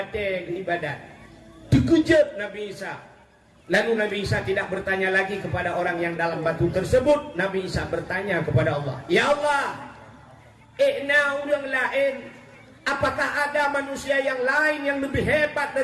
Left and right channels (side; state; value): both; identical; correlation 1.00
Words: ibadat. Dikejut Nabi Isa. Lalu Nabi Isa tidak bertanya lagi kepada orang yang dalam batu tersebut. Nabi Isa bertanya kepada Allah, ya Allah, orang lain, apakah ada manusia yang lain yang lebih hebat